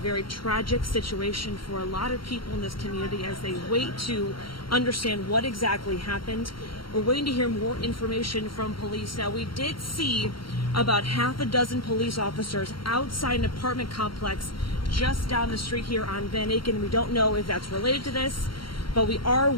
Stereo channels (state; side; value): late; right; 0.73 ms